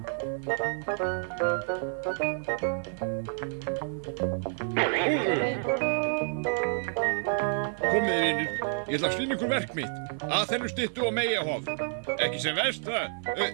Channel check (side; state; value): left; silent; 58 dB below the other